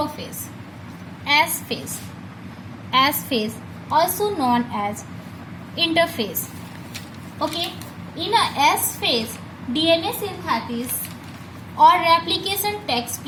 S phase also known as interphase. Okay, in a S phase, DNA synthesis or replication takes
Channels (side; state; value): both; identical; correlation 1.00